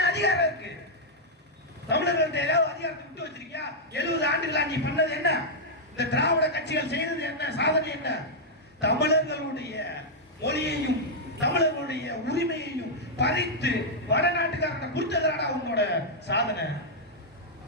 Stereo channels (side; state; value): both; normal; correlation -0.05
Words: அதிகாரம் இருக்கு? தமிழர்கள்ட்ட ஏதாவது அதிகாரத்தை விட்டு வச்சிருக்கியா? 70 ஆண்டுகளா நீ பண்ணது என்ன? இந்த திராவிட கட்சிகள் செய்தது என்ன? சாதனை என்ன? தமிழர்களுடைய மொழியையும் தமிழர்களுடைய உரிமையையும் பறித்து வடநாட்டுக்காரனை கொடுத்ததுடா உங்களோட சாதனை.